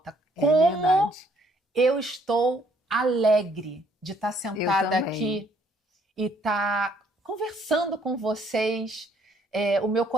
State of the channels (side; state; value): both; normal; correlation 0.66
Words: É Como verdade. eu estou alegre de estar sentada Eu também. aqui e estar conversando com vocês. O meu